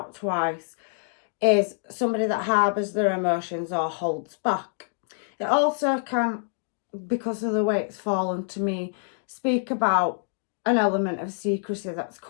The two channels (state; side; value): silent; right; digital silence